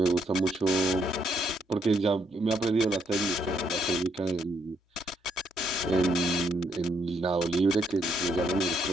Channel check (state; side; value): normal; both; correlation 0.74